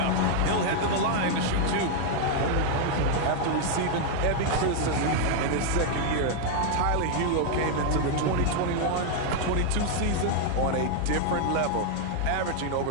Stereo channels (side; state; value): both; different; correlation 0.00